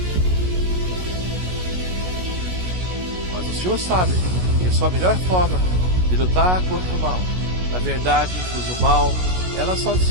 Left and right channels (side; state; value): left; late; 16 ms